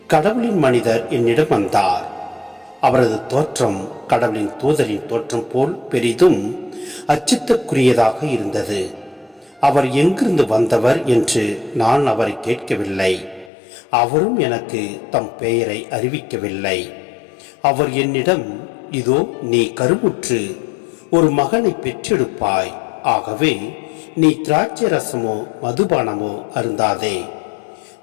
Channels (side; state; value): right; drops out; at 13.5 s